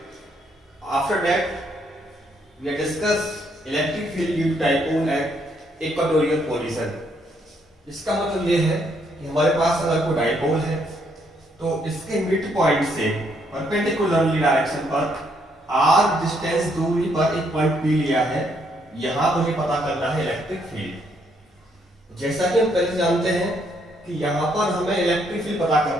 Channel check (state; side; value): normal; both; correlation 0.72